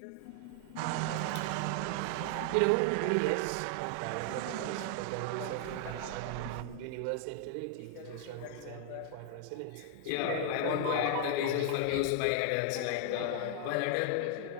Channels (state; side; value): different; both; correlation 0.00